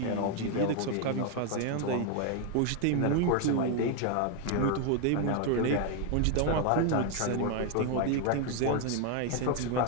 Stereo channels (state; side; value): different; both; correlation 0.01